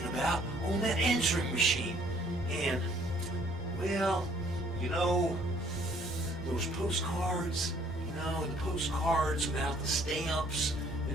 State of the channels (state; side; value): normal; both; correlation 0.61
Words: about on that answering machine. And, well, those postcards, the postcards without the stamps